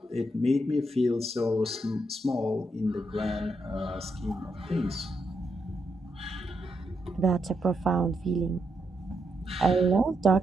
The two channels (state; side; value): normal; both; correlation 0.81